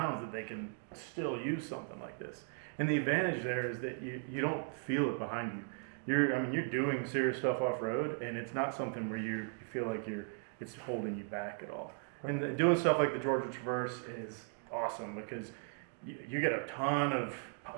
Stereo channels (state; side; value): silent; left; 53 dB below the other